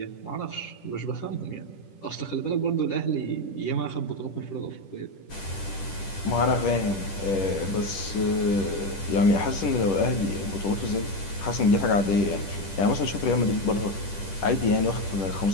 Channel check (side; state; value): right; late; 10 ms